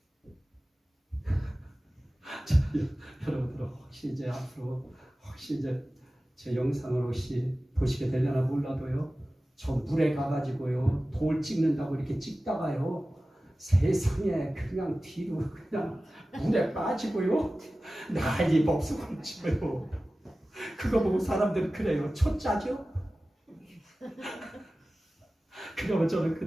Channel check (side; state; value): both; normal; correlation 0.96